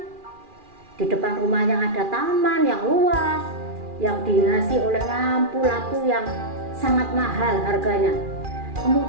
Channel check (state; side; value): late; left; 2.4 ms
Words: di depan rumahnya ada taman yang luas, yang dihiasi oleh lampu-lampu yang sangat mahal harganya.